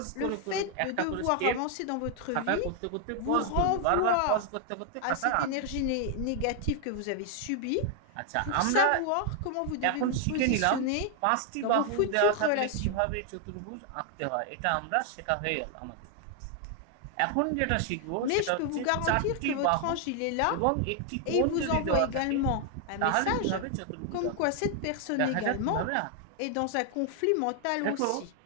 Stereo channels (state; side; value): different; both; correlation 0.00